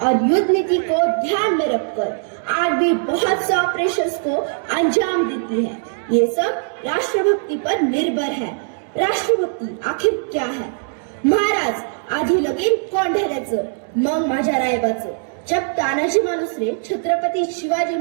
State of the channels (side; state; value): left; silent; 66 dB below the other